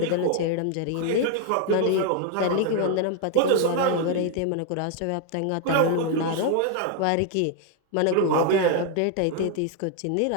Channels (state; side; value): different; both; correlation 0.00